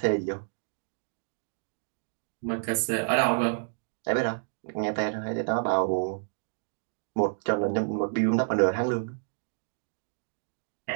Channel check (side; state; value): left; silent; digital silence